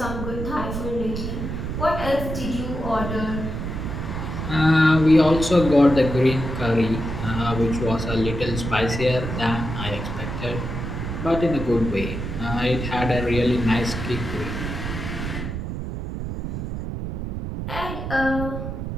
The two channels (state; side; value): noise; right; rumble, 5 dB below the sound